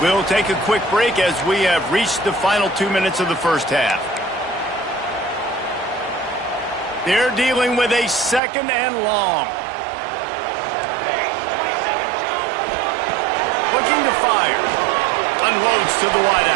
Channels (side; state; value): left; drops out; at 8.4 s